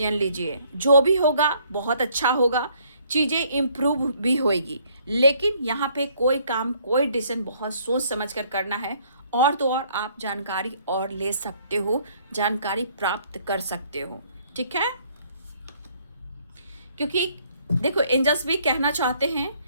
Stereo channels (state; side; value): inverted; both; correlation -0.63